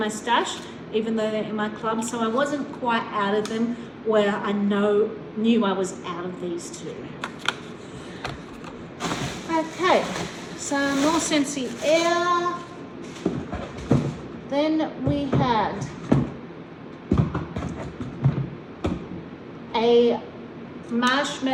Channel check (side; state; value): both; identical; correlation 1.00